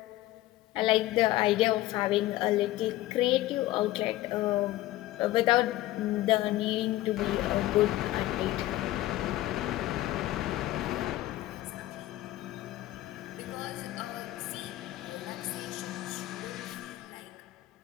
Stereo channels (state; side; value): quieter; right; 16.3 dB